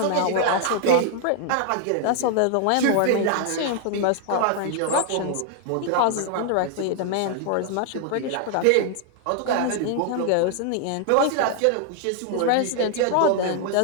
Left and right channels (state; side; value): different; both; correlation 0.00